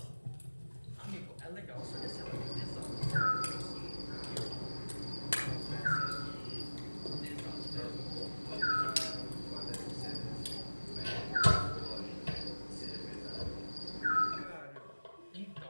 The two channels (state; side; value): inverted; both; correlation -1.00